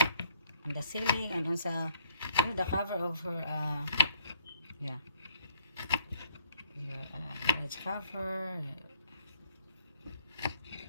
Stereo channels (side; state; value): both; inverted; correlation -0.67